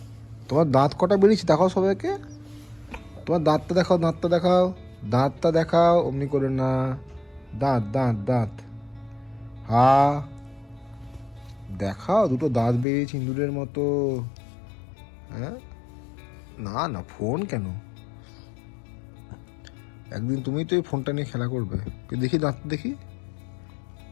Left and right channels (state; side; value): drops out; right; at 12.9 s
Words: তোমার দাঁত কটা বেরিয়েছে দেখাও সবাইকে। তোমার দাঁতটা দেখাও, দাঁতটা দেখাও, দাঁতটা দেখাও। অমনি করে না, দাঁত দাঁত দাঁত। দেখাও, দুটো দাঁত বেরিয়েছে ইঁদুরের মতো। হ্যাঁ, না না ফোন কেন? একদিন তুমি তো এই ফোনটা নিয়ে খেলা করবে। দেখি দাঁত দেখি,